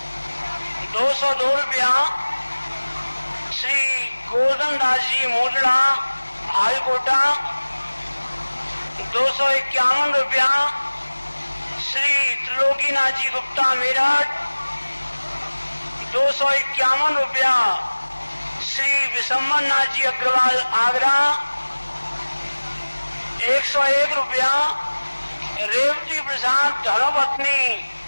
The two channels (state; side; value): inverted; both; correlation -1.00